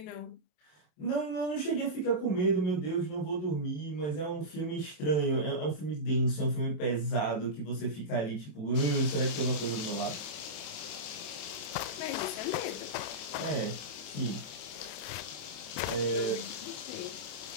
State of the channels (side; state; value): right; late; 27 ms